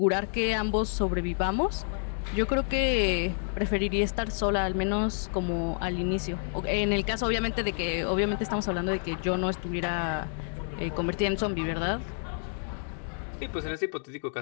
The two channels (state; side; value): silent; right; 59 dB below the other